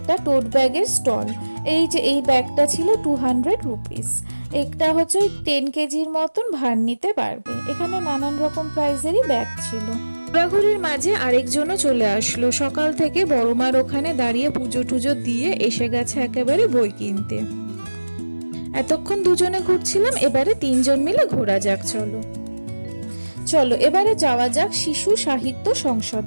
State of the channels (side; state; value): both; inverted; correlation -1.00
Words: টোট ব্যাগের স্টল। এই যে এই ব্যাগটা ছিল 200 রুপিস। একটা হচ্ছে ওই 10 কেজির মতন ভার নিতে পারবে। এখানে নানান রকম প্রাইজেরই ব্যাগ ছিল। ঘোরাঘুরির মাঝে আরেকজনও চলে আসলো। সকাল থেকে বড়মার ওখানে দাঁড়িয়ে পুজো টুজো দিয়ে এসে গেছে একেবারে বই কিনতে। এতক্ষণ দুজনে ঘুরছিলাম, এবারে 3 জন মিলে ঘোরা যাক। চলো এবারে যাওয়া যাক শিশু সাহিত্য